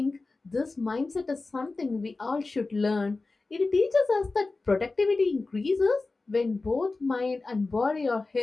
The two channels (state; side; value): quieter; right; 3.6 dB